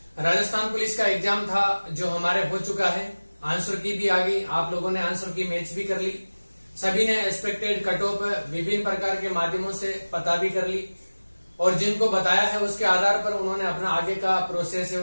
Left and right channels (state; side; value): inverted; both; correlation -1.00